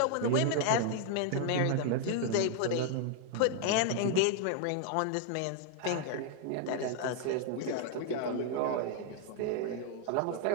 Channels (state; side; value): different; both; correlation 0.00